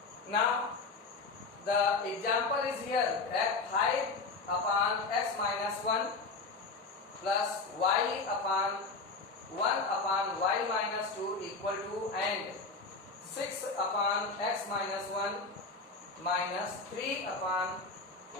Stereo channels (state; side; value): quieter; right; 3.9 dB